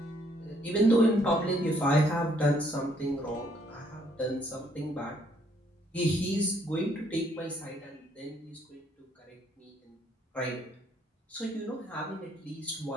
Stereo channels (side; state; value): both; normal; correlation 0.68